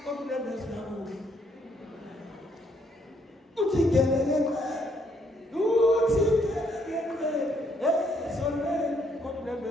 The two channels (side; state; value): both; normal; correlation 0.71